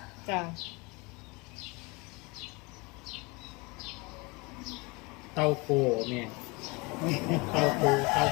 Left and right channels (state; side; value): quieter; right; 26.3 dB